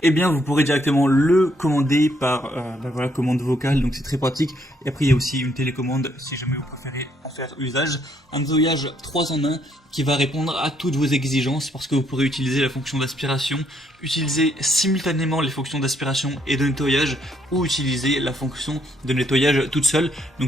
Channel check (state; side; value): normal; both; correlation 0.71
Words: eh bien vous pourrez directement le commander par commande vocale. Donc c'est très pratique. Et après il y a aussi une télécommande si jamais vous préférez en faire usage. Un nettoyage 3 en 1 qui va répondre à toutes vos exigences parce que vous pourrez utiliser la fonction d'aspiration, utiliser simultanément les fonctions d'aspiration et de nettoyage ou utiliser la fonction de nettoyage toute seule.